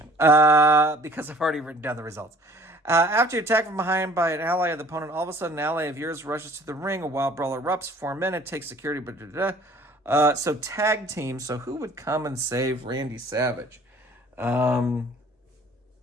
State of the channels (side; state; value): both; normal; correlation 0.52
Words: because I've already written down the results. After you attack from behind by an ally of the opponent, all of a sudden an ally of yours rushes to the ring. A wild brawl erupts. 4 minutes. Takes security. So tag team. So who would come and save Randy Savage? That